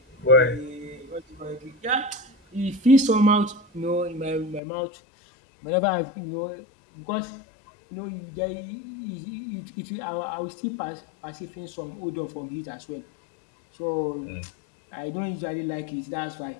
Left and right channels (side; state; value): right; drops out; at 4.6 s